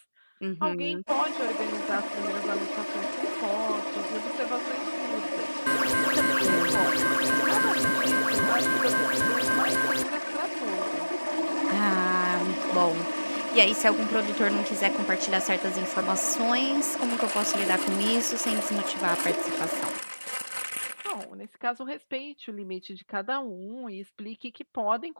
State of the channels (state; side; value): inverted; both; correlation -1.00